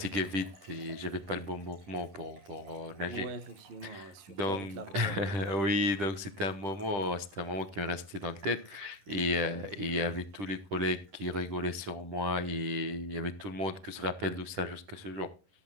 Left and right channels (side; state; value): left; late; 10 ms